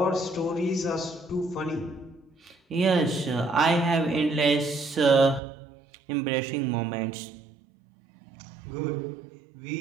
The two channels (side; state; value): left; drops out; at 5.4 s